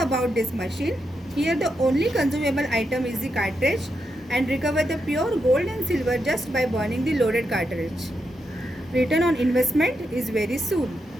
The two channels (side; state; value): both; normal; correlation 0.84